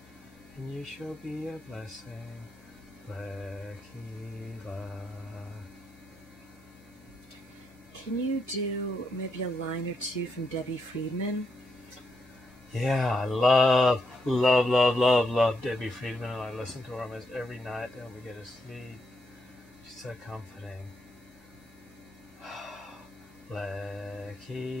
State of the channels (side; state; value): both; normal; correlation 0.80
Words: And you shall be a blessing. Can you do maybe a line or two from Debbie Friedman? Yeah, I love Debbie Friedman, and I listen to her almost every night when we get to sleep. She's so comforting.